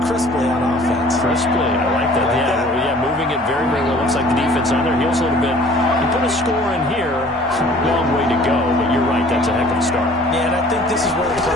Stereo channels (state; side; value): normal; both; correlation 0.51